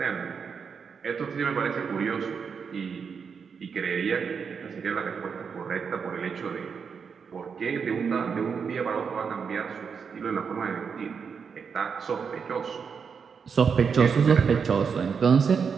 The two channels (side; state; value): left; quieter; 6.2 dB